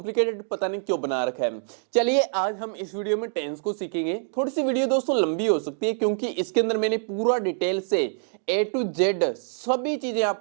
पता नहीं क्यों बना रखा है। चलिए आज हम इस वीडियो में टेंस को सीखेंगे। थोड़ी सी वीडियो दोस्तों लंबी हो सकती है, क्योंकि इसके अंदर मैंने पूरा डिटेल से ए टू जेड सभी चीजें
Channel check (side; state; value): left; silent; digital silence